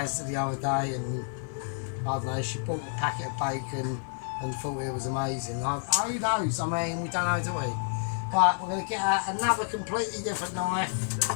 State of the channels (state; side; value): silent; right; 58 dB below the other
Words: the other day, and I don't know, she bought a packet of bacon and thought it was amazing. Who knows? I mean, we don't know, do we? Right, we're going to get out another completely different knife.